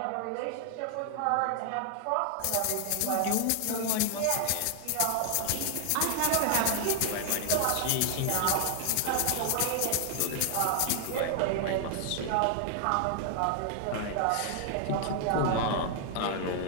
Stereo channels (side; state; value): both; different; correlation 0.00